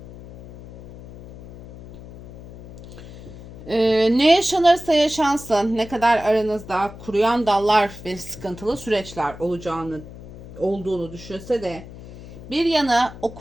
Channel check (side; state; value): left; noise; hum, 16 dB below the sound